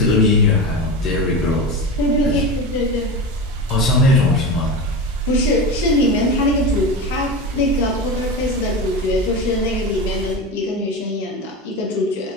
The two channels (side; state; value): both; normal; correlation 0.24